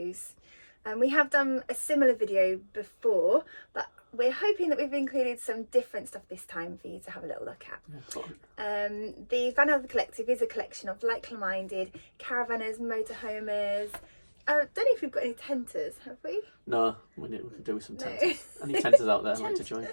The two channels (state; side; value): inverted; both; correlation -1.00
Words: We have done a similar video before, but we're hoping that we've included some different stuff this time for you to have a little look at. The Vanother Collective is a collection of like-minded caravanners, motorhomers. I don't know if we've got any tenters, have we? No, we could do with some tenters. Any tenters out there like to join?